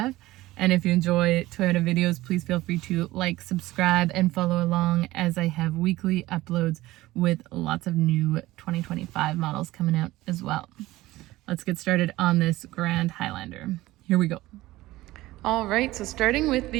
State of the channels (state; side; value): quieter; left; 17.6 dB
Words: And if you enjoy Toyota videos, please feel free to like, subscribe, and follow along as I have weekly uploads with lots of new 2025 models coming out as well. Let's get started on this Grand Highlander. Here we go. All right, so starting with